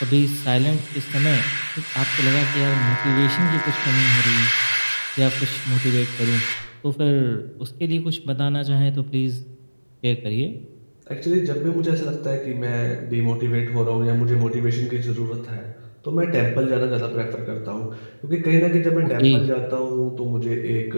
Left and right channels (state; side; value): inverted; both; correlation -1.00